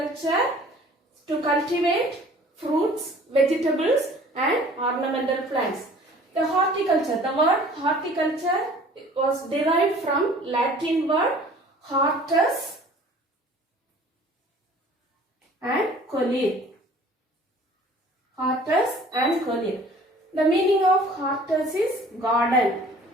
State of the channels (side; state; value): both; normal; correlation 0.50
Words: to cultivate fruits, vegetables and ornamental plants. The horticulture, the word horticulture was derived from Latin word hortus and colere. Hortus and colere. The meaning of hortus is garden.